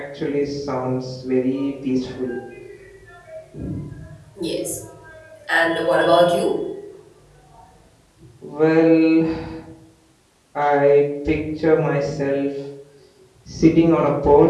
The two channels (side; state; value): both; identical; correlation 1.00